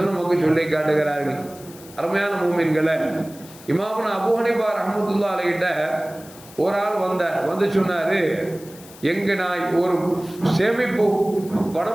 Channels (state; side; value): noise; left; hiss, 20 dB below the sound